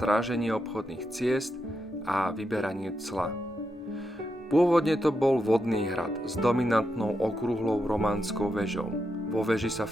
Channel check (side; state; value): both; normal; correlation 0.85